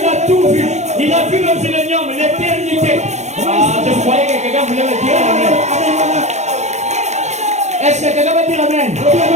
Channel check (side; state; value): left; late; 0.33 ms